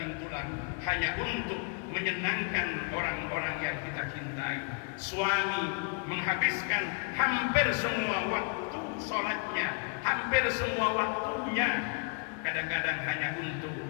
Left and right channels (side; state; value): right; quieter; 36.4 dB